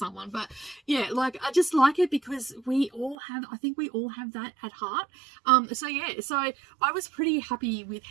But yeah, like, I just like it because I think we all have that at heart. So yeah, so I was pretty happy with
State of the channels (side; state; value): left; drops out; at 3.2 s